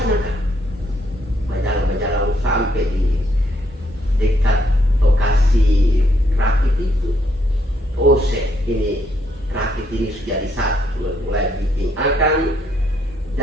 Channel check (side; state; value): both; normal; correlation 0.73